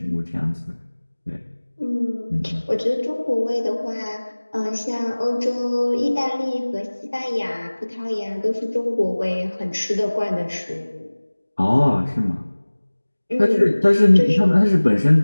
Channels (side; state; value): both; inverted; correlation -1.00